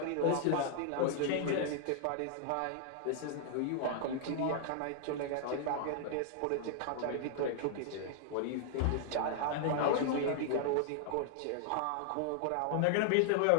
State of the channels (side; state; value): both; different; correlation -0.01